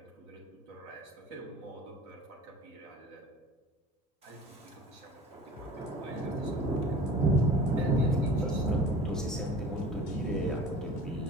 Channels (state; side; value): normal; both; correlation 0.42